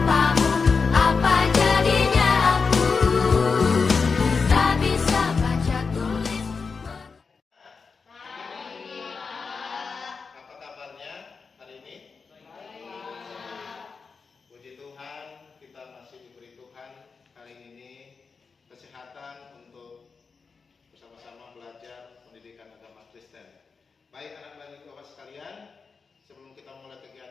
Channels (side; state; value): right; quieter; 5.0 dB